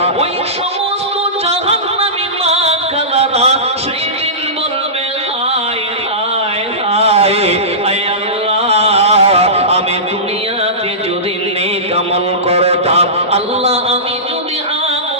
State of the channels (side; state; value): both; normal; correlation -0.20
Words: ওই সমস্ত জাহান্নামী মা কালারা সেদিন বলবে, হায় হায় হায়, আয় আল্লাহ আমি দুনিয়াতে যদি নেক আমল করতাম, আল্লাহ আমি যদি